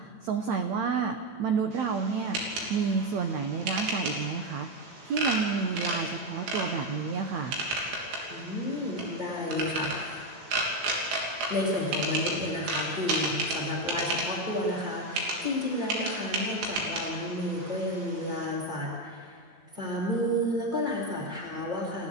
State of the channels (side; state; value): left; late; 8.9 ms